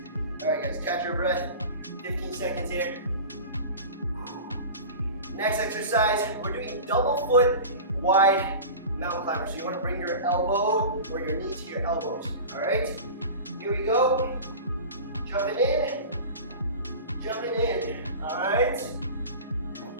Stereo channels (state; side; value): inverted; both; correlation -0.34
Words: All right, guys, catch your breath. 15 seconds here. Next exercise, we're doing double foot wide mountain climber. So you want to bring your elbow or your knee to your elbows. All right? Here we go. Jumping in. Jumping in. All right?